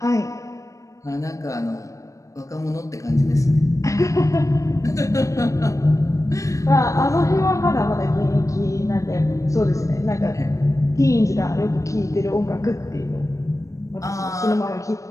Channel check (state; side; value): late; right; 0.16 ms